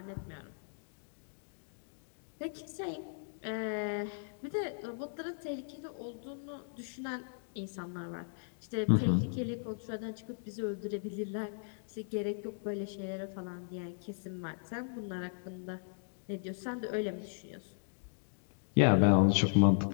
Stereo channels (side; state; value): right; silent; digital silence